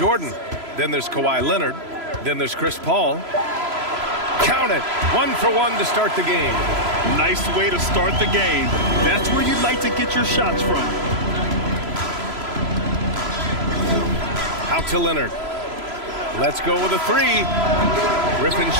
Then there's Kawhi Leonard. Then there's Chris Paul. Count it. 1 for 1 to start the game. Nice way to start the game. That's where you'd like to get your shots from. Out to Leonard. Let's go with a three. Griffin's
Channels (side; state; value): left; late; 3.0 ms